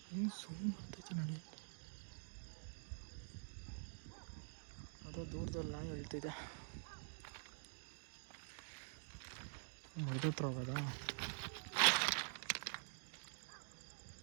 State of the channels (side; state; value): left; silent; digital silence